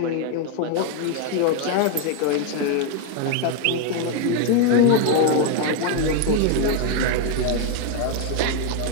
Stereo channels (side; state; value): both; different; correlation 0.01